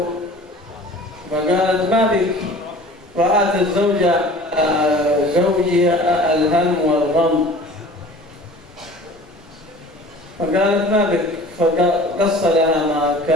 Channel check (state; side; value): normal; both; correlation 0.44